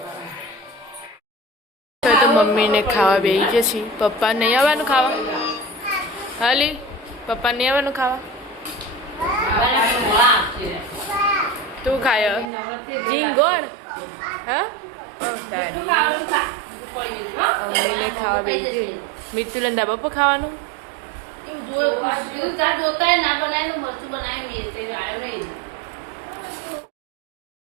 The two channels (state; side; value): drops out; left; at 12.5 s